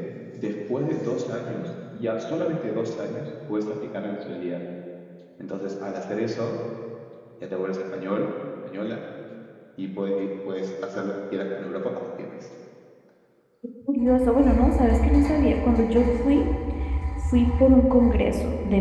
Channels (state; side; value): identical; both; correlation 1.00